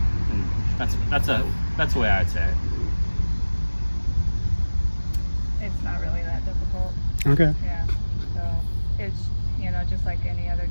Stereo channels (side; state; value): both; inverted; correlation -1.00